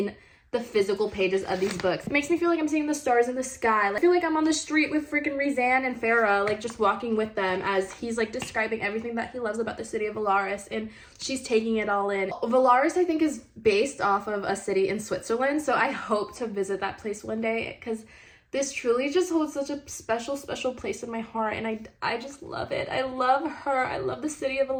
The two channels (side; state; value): both; identical; correlation 1.00